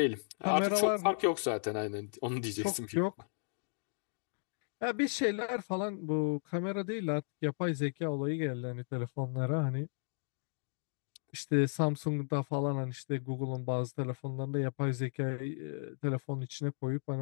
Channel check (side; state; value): right; silent; digital silence